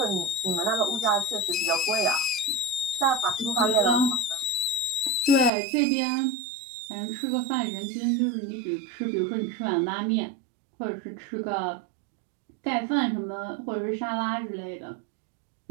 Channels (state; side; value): drops out; left; at 5.5 s